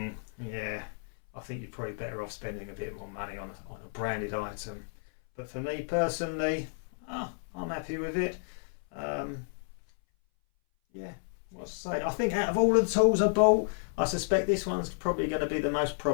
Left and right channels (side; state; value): right; silent; 57 dB below the other